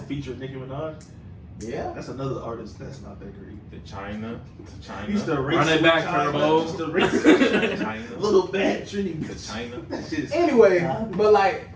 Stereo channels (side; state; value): both; identical; correlation 1.00